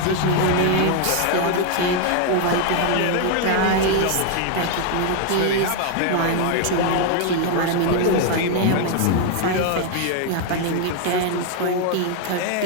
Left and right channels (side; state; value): both; different; correlation 0.00